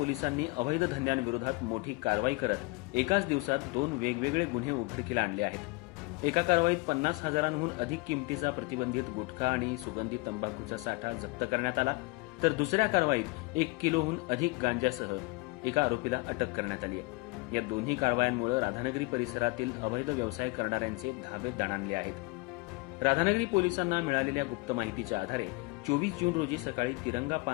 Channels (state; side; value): quieter; right; 25.3 dB